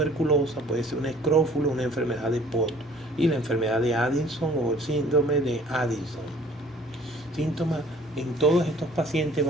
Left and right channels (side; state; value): both; normal; correlation 0.54